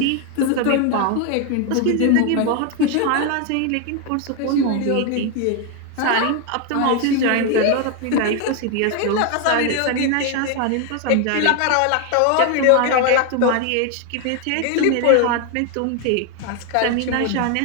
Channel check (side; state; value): both; different; correlation 0.01